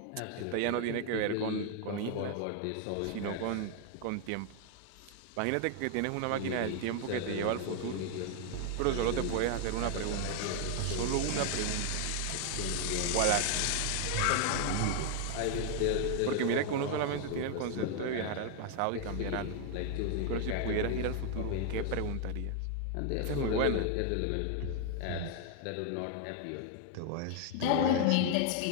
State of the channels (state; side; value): different; both; correlation 0.00